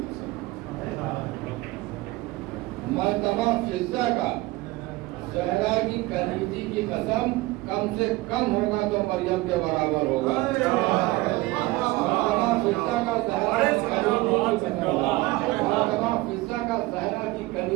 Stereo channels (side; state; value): left; quieter; 20.4 dB